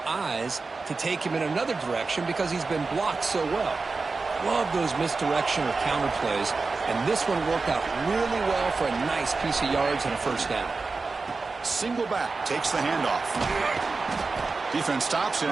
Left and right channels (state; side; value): quieter; left; 4.1 dB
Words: eyes to take him in another direction because he's been blocked so well. Love those misdirection or counter plays, and this one worked out really well for a nice piece of yards and a first down. Single back takes the handoff. Defense stops